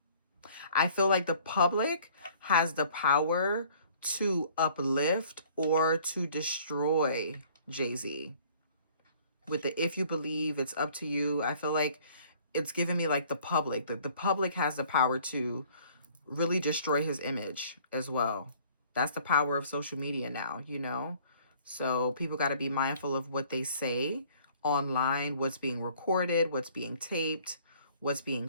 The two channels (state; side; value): inverted; both; correlation -0.55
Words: I feel like the public has the power to uplift or to destroy Jay-Z. With the if you believe, it's up to you. I feel like it's giving me like the public. That the public has the power to really destroy his image as well. That's the power of social media now, So people got to be mindful of what they say online, what's being recorded, what's being taped, what's being